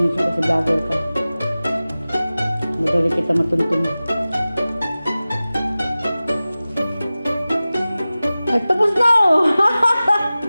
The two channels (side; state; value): both; inverted; correlation -0.97